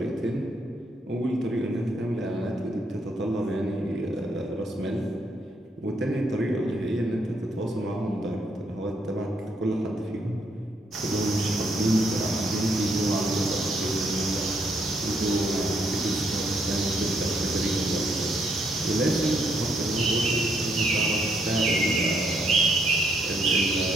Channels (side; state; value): both; normal; correlation 0.73